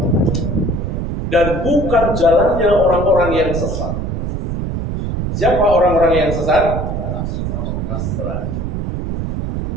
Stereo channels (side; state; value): right; noise; rumble, 3 dB below the sound